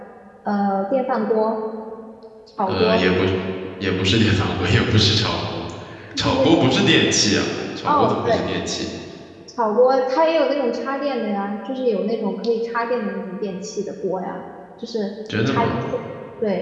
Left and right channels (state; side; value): identical; both; correlation 1.00